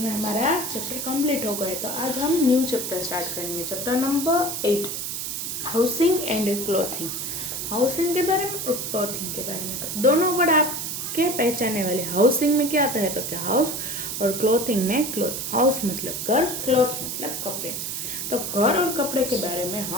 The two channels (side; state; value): right; noise; hiss, 4 dB below the sound